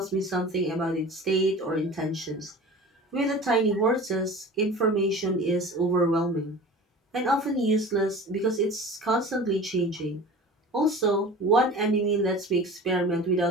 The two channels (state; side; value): normal; both; correlation 0.38